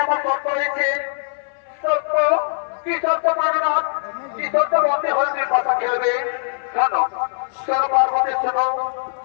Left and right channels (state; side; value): silent; right; 58 dB below the other